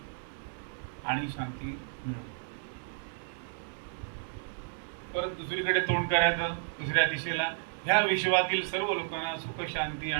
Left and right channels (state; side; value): silent; left; 56 dB below the other